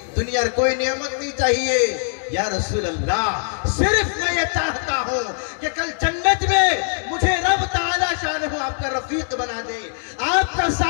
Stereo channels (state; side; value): silent; right; digital silence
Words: दुनिया कोई नियामत नहीं चाहिए। या रसूल अल्लाह, सिर्फ मैं ये चाहता हूं कि कल जन्नत में मुझे रब ताला शानहू आपका रफीक बना दे, आपका